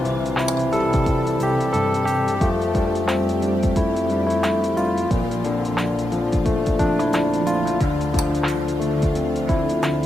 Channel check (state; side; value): normal; both; correlation 0.87